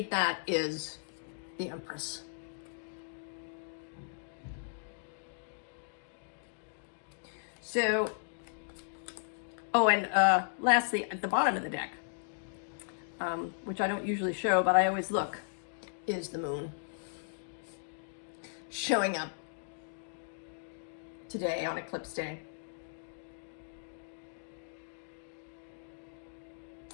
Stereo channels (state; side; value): silent; right; digital silence